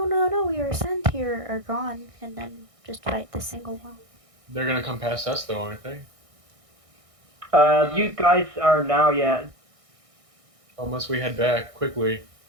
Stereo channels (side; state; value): left; late; 1.6 ms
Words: we were sent here are gone, and then just fight the single one. They're gonna come past us though, aren't they? You guys are now, yeah, Unless we head back quickly.